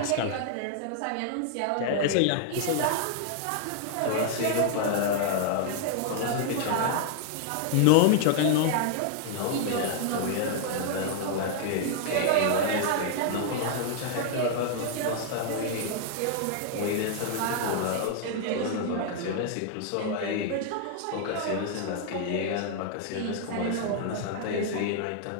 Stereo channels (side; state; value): both; different; correlation 0.00